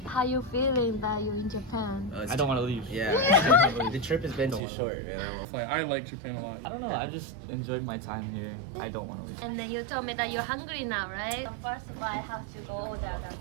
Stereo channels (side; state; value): left; drops out; at 4.6 s